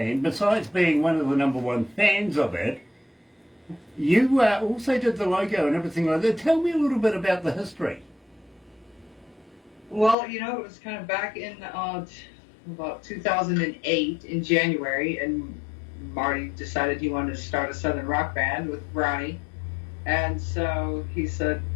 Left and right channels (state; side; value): drops out; right; at 10.2 s